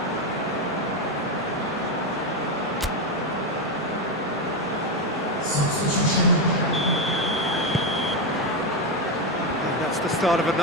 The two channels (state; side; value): normal; both; correlation 0.09